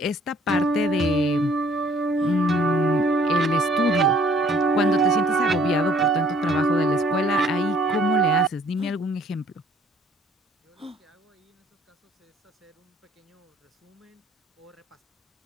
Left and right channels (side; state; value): both; normal; correlation 0.59